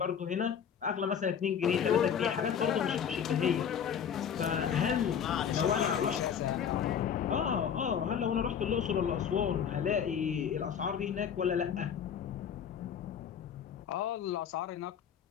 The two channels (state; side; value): quieter; right; 8.0 dB